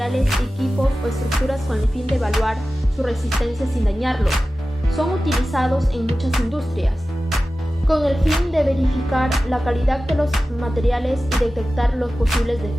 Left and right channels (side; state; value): both; normal; correlation 0.95